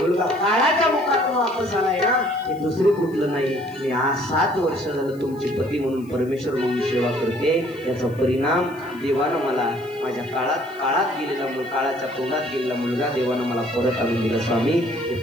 काळाच्या मुखातून वापस आलाय ना, हे दुसरे कुठलं नाही. मी आज 7 वर्ष झालं तुमची पती म्हणून परमेश्वर म्हणून सेवा करते. याचा परिणाम देवानं मला माझ्या काळात गेलेला काळाच्या तोंडात गेलेला मुलगा देवानं मला परत आणून दिला. स्वामी, हे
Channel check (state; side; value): noise; left; hiss, 28 dB below the sound